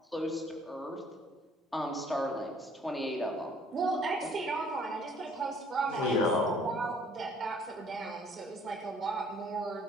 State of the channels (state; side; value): normal; both; correlation 0.58